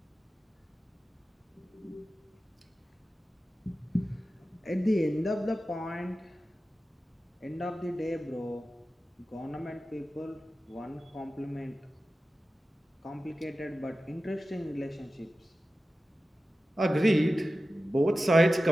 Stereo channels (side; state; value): both; normal; correlation 0.94